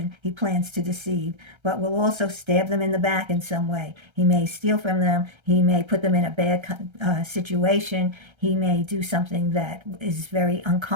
he plans to deceive, but will also stab them in the back in some way. He may steal from them. He may put them in a bad situation. He may do something that is very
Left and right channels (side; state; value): left; late; 1.3 ms